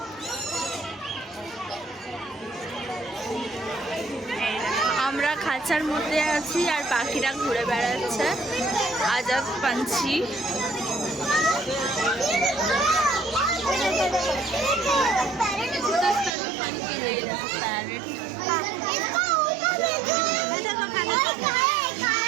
আমরা খাঁচার মধ্যে আছি আর পাখিরা ঘুরে বেড়াচ্ছে, আজাদ পাঞ্ছি।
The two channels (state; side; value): drops out; left; at 16.4 s